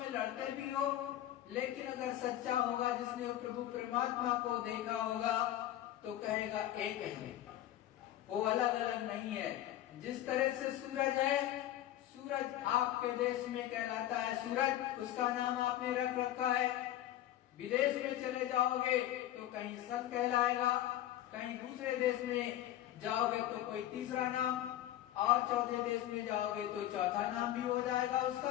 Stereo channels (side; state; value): right; quieter; 13.1 dB